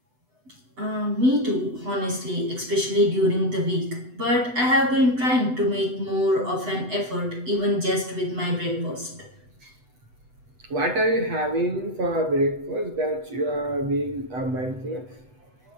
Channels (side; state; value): left; late; 8.0 ms